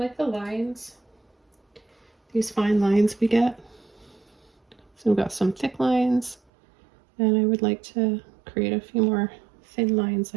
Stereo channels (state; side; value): drops out; left; at 6.4 s